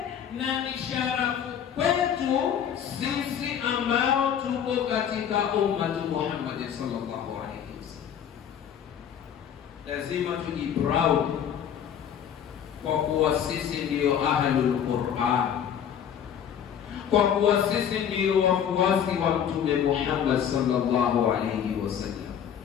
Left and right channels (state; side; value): quieter; right; 8.8 dB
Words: na ni sharafu kwetu sisi ambao tuko katika ummatu Muhammad sallallahu alaihi wasallam. Lazima tujiproud kwa kuwa sisi ndio ahlul Qur'an, kwa kuwa sisi ndio wafuasi wa Mtume Muhammad sallallahu alaihi wasallam.